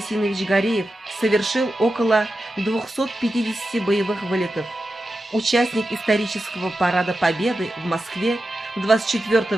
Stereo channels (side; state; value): both; normal; correlation 0.91